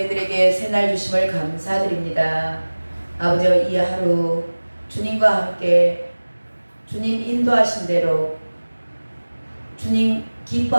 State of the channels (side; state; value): both; inverted; correlation -1.00